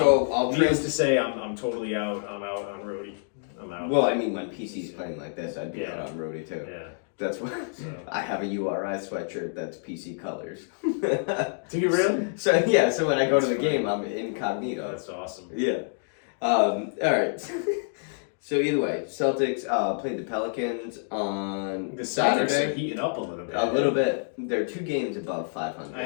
I'll needless to say, I'm totally out. I'm out on roadie. I'm out. Well, I mean, when PC's playing like this, I'd be Yeah. out on roadie too. Yeah. That's what So. I have a URI sweatshirt that's PC colors. Do you really? So yeah, so when I go to the That's game, I'm incognito. That's awesome. Yeah. All right. So either way, Celtics played the Pelicans on The Celtics Saturday. are heating up a little bit. A little bit. They're 2 games above 500. I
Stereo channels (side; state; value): right; silent; digital silence